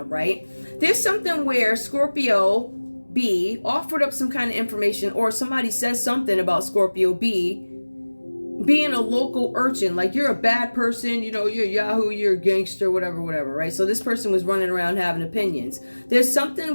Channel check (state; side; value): inverted; both; correlation -1.00